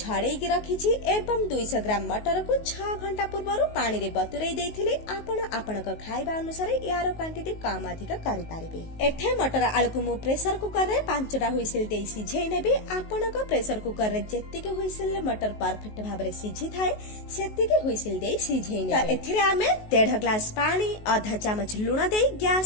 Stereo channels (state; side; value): late; right; 19 ms